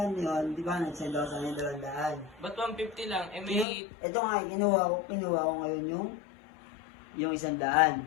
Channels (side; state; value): right; drops out; at 3.7 s